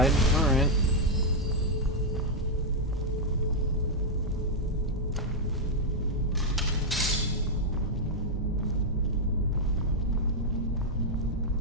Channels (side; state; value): both; normal; correlation -0.02